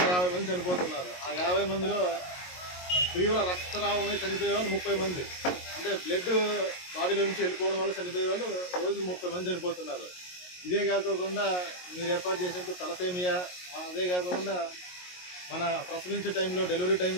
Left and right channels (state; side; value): late; right; 22 ms